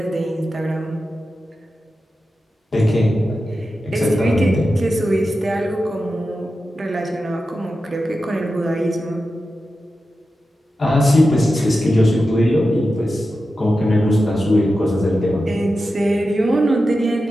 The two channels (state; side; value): normal; both; correlation 0.91